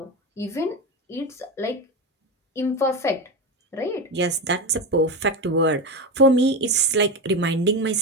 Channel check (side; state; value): both; normal; correlation 0.18